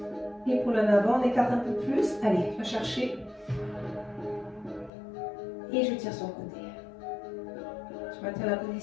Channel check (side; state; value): right; drops out; at 4.9 s